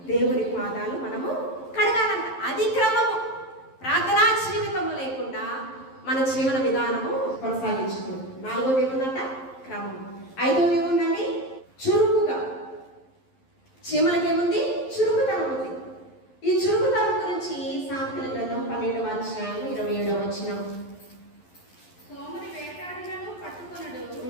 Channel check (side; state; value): right; late; 11 ms